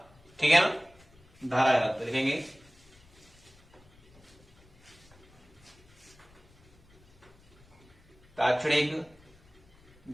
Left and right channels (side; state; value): left; noise; rumble, 28 dB below the sound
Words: ठीक है ना, धारा घनत्व लिखेंगे। तात्क्षणिक